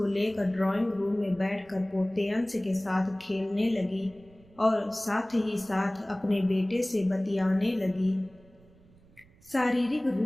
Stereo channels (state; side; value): noise; right; rumble, 27 dB below the sound